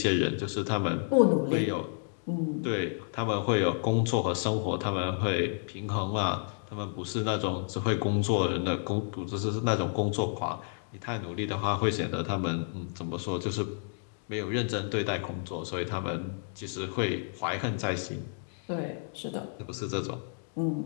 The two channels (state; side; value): silent; right; digital silence